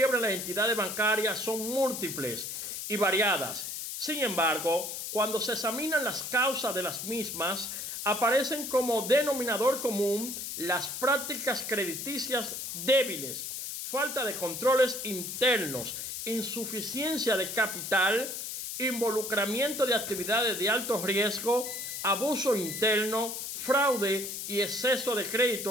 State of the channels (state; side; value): noise; left; hiss, 6 dB below the sound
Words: las entidades bancarias son múltiples y variadas. Sin embargo, cuando se examinan las causas de las mismas, aparecen como denominador común las prácticas crediticias débiles, falta de controles internos, insuficiencia de capital, involucramiento de actividades de alto riesgo, abuso interno, fraude y exceso de